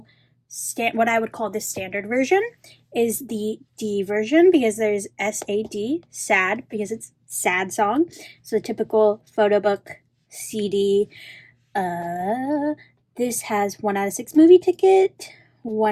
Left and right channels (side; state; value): both; identical; correlation 1.00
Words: what I would call the standard version is the D version, because there's SAD, sad, because it's sad song. So the typical photo book CD. This has 1 out of 6 movie ticket,